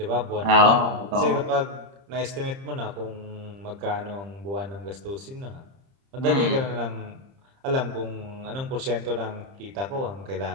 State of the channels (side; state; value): left; late; 30 ms